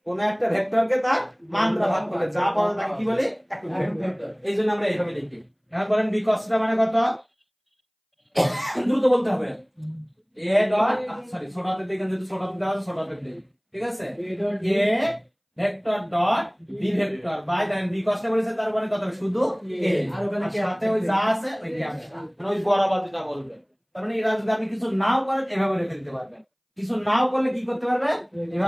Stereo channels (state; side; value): identical; both; correlation 1.00